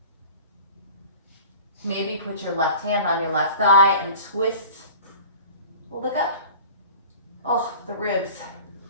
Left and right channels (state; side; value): inverted; both; correlation -0.41